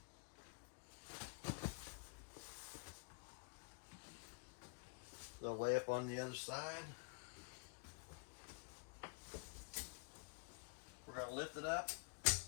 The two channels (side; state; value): right; quieter; 35.9 dB